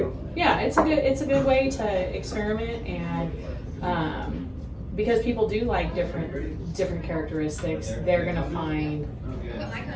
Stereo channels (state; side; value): identical; both; correlation 1.00